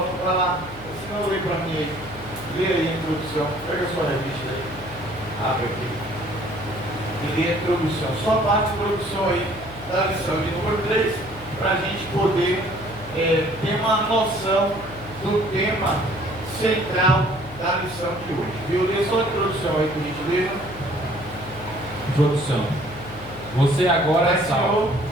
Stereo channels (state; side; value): noise; left; hum, 16 dB below the sound